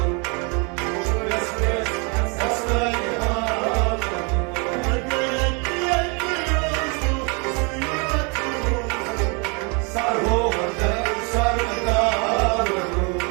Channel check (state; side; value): quieter; left; 32.9 dB